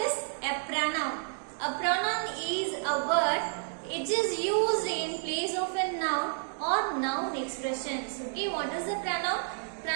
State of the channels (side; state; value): left; silent; digital silence